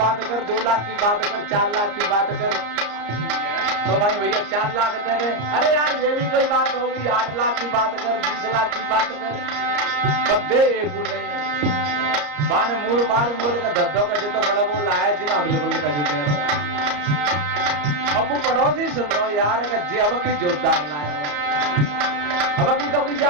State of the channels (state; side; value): late; left; 34 ms